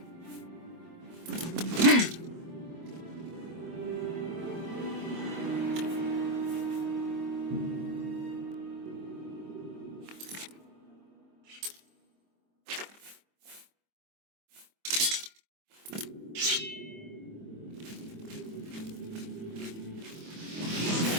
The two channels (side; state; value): left; late; 25 ms